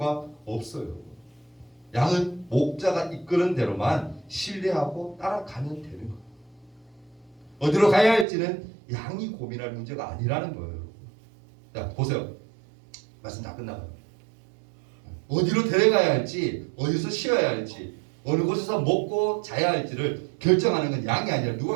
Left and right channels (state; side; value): drops out; left; at 8.2 s